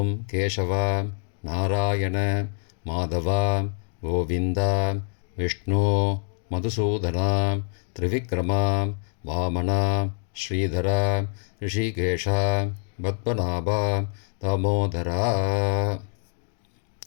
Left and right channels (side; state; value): right; silent; 61 dB below the other